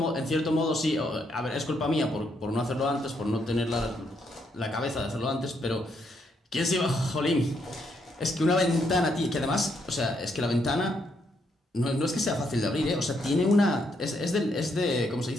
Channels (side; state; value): both; normal; correlation 0.75